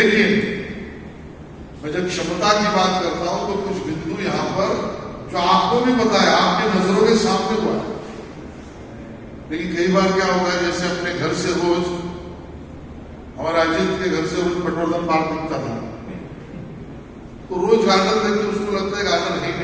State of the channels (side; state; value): both; identical; correlation 1.00